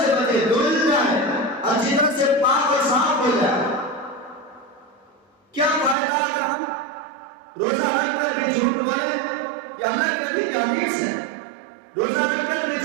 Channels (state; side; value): drops out; left; at 6.0 s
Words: سے بچے، دھل جائے، اچھی طرح سے پاک اور صاف ہو جائے. کیا فائدہ اگر ہم روزہ رکھ کر بھی جھوٹ بولے؟ یہ اللہ کے نبی کی حدیث ہے. روزہ رکھ کر بھی